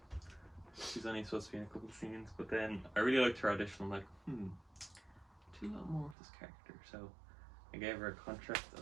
She's only supposed to be in a couple of scenes, but then I really liked her audition. I'm like, do a lot more with this character. So I gave her a contract.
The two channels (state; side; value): drops out; left; at 6.2 s